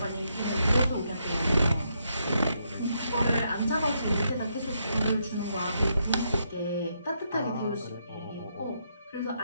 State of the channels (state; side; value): inverted; both; correlation -0.77